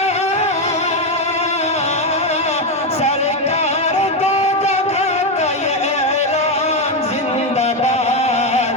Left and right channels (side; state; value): both; normal; correlation 0.08